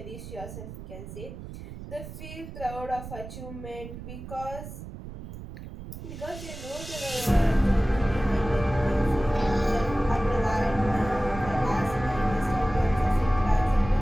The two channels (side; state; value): right; noise; rumble, 12 dB below the sound